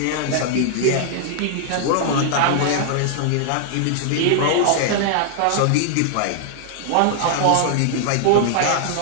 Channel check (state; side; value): different; both; correlation -0.01